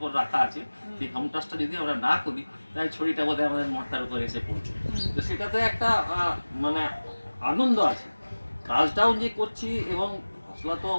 রাখা আছে। সেই হোম টাস্কটা যদি আমরা না করি তাই ছড়িটা বোধহয় আমাদের মাথার উপরে এসে পড়ছে। তো সেটাতে একটা মানে আনন্দ আছে, কাজটাও যে করছি এবং হসলা তো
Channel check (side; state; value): both; inverted; correlation -1.00